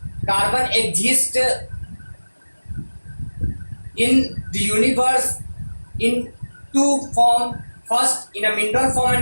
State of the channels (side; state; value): both; inverted; correlation -1.00